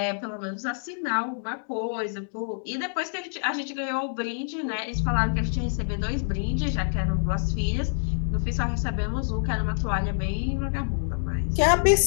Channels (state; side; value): silent; right; digital silence